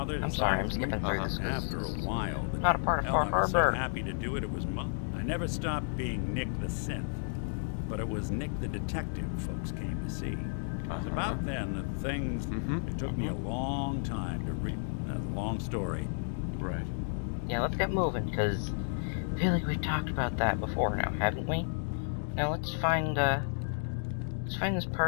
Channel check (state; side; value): silent; right; digital silence